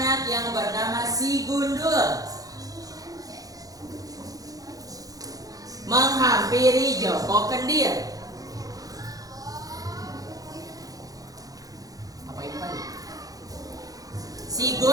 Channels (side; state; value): left; late; 0.17 ms